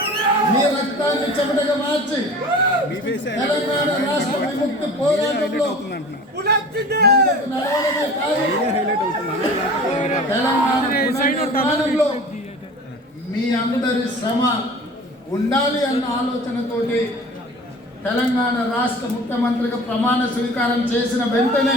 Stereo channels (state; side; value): normal; both; correlation 0.41